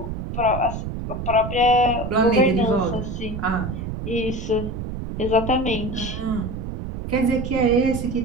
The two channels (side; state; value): right; noise; rumble, 6 dB below the sound